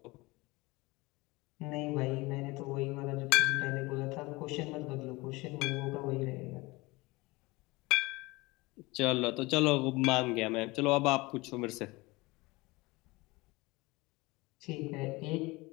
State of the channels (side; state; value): right; quieter; 22.8 dB